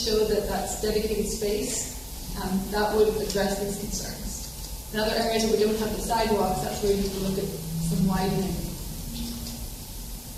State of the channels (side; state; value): both; identical; correlation 1.00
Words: that that's dedicated space. That would address these concerns. In other areas where we don't have the sidewalks, that's where you have to look at some widening.